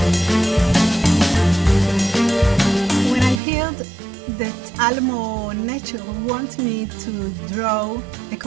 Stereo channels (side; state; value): left; drops out; at 3.4 s